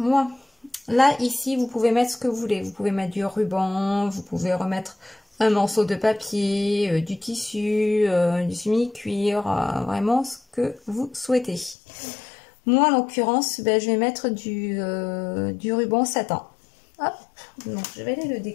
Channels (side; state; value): right; drops out; at 11.8 s